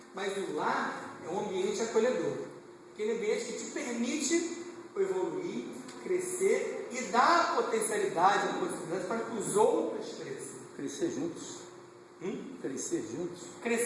Mas o lar é um ambiente acolhedor, aquele ambiente que te permite evoluir, crescer e dar a potencialidade, a possibilidade para que os outros cresçam. Crescer juntos. Crescer juntos.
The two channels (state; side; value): identical; both; correlation 1.00